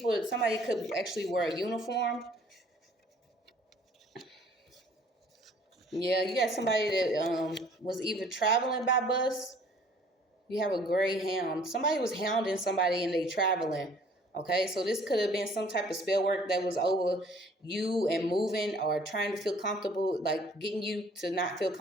could actually wear a uniform. Yeah, you got somebody that was either traveling by bus. You have a gray hound. Somebody was hounding somebody and they traveling. Okay, so this could have been some type of spell work that was over you and moving or trying to feel comfortable, like getting you to not feel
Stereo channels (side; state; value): both; normal; correlation 0.56